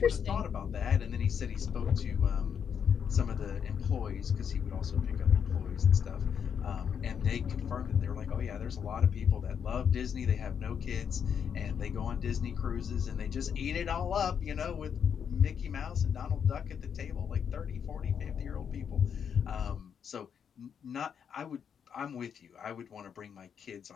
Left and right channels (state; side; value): quieter; right; 7.6 dB